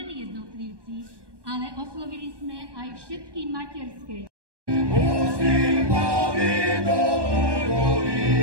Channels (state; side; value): late; left; 1.2 ms